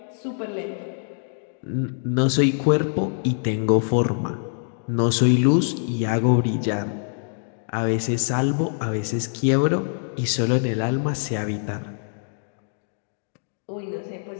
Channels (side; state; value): right; silent; 62 dB below the other